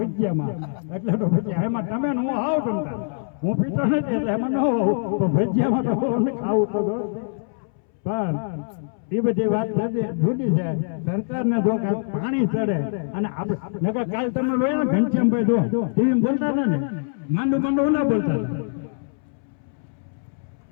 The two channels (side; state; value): right; silent; 63 dB below the other